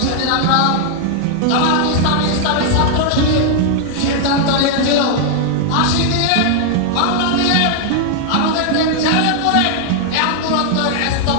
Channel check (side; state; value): both; different; correlation 0.00